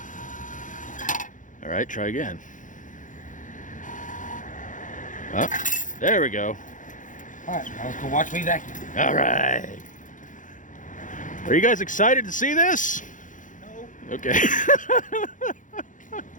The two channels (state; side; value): late; right; 0.37 ms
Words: All right, try again. Oh, there we go. All right, now let's go watch me vacuum. All right. Are you guys excited to see this? No. Okay.